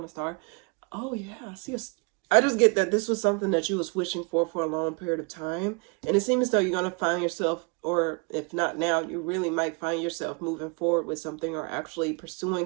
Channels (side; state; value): left; quieter; 32.1 dB